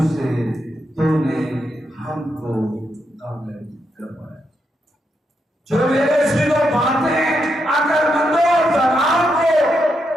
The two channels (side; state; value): both; normal; correlation 0.82